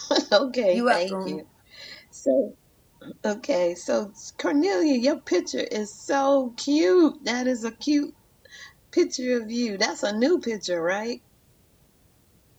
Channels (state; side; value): identical; both; correlation 1.00